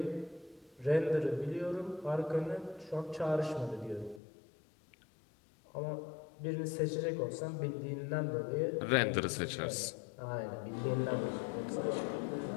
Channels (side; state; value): right; drops out; at 4.2 s